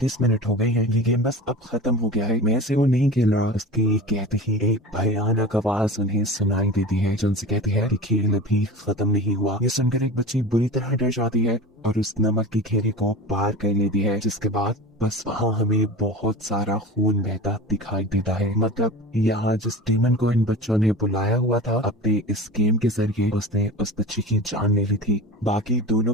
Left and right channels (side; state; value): both; normal; correlation 0.32